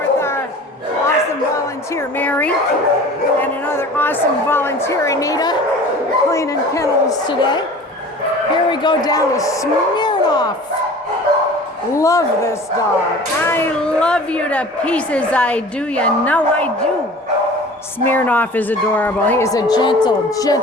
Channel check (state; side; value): normal; both; correlation 0.42